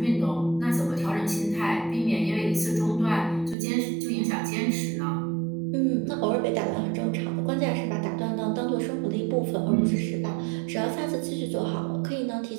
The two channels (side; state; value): left; drops out; at 3.6 s